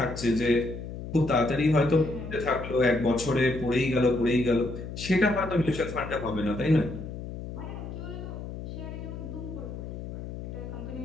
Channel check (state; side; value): noise; left; hum, 9 dB below the sound